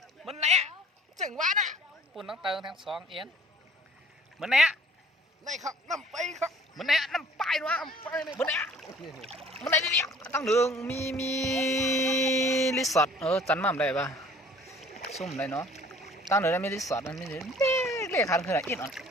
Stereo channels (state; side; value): normal; both; correlation 0.52